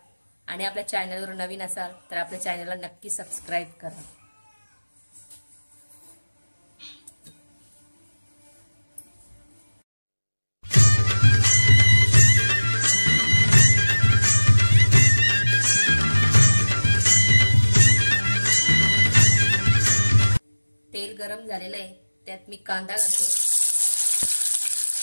आणि आपल्या चॅनलवर नवीन असाल तर आपल्या चॅनलला नक्की सबस्क्राईब करा। तेल गरम झालेलं आहे, त्यात मी कांदा घालते।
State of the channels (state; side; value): inverted; both; correlation -1.00